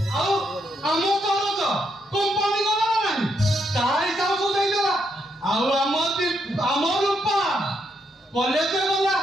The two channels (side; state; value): both; normal; correlation 0.77